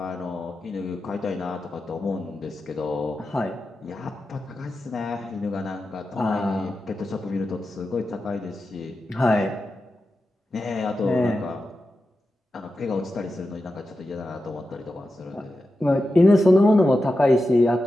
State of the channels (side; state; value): both; normal; correlation 0.91